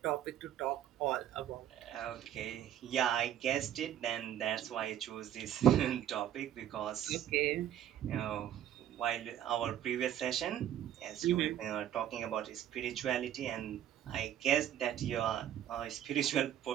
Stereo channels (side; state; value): left; quieter; 10.9 dB